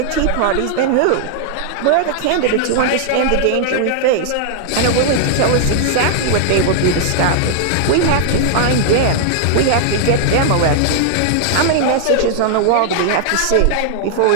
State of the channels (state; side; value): different; both; correlation -0.01